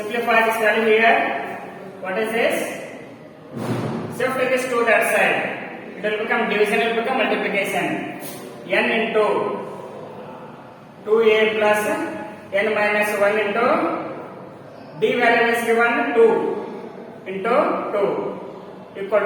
this value here. What is this? Shift this to that side. It will become division, it will become multiplication. N into 2a plus n minus 1 into d value is given 2 into 2. Equal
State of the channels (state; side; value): identical; both; correlation 1.00